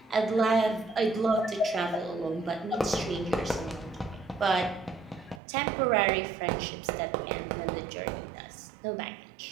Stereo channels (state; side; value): drops out; left; at 5.4 s